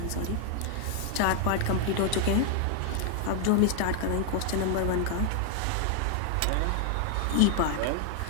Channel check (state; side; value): different; both; correlation 0.00